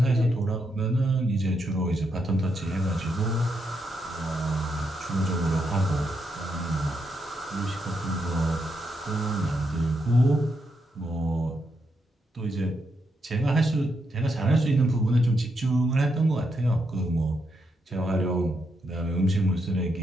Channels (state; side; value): normal; both; correlation 0.81